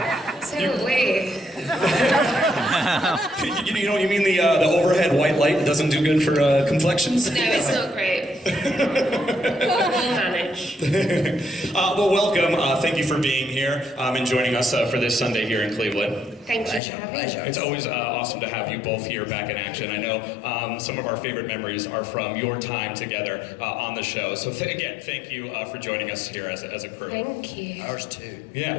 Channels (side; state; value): right; drops out; at 16.8 s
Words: So are we. You mean the overhead white light doesn't do good for complexions? No, it's not great. We'll manage. Well, welcome. Thank you for being here and joining us for this Sunday here in Cleveland. Thank you for having me. It's always awesome to have you both here back in action. I know some of our favorite memories are from your time together on the show. So again, thank you for joining us here as a crew. Thank you. Ours too.